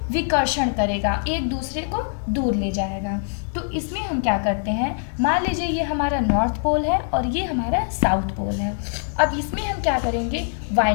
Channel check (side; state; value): right; silent; 61 dB below the other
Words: विकर्षण करेगा, एक दूसरे को दूर ले जाएगा। तो इसमें हम क्या करते हैं, मान लीजिए ये हमारा नॉर्थ पोल है और ये हमारा साउथ पोल है। अब इसमें हम क्या करेंगे,